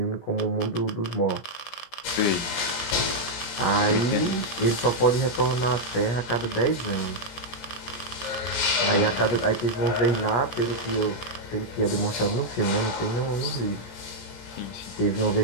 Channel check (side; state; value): right; late; 17 ms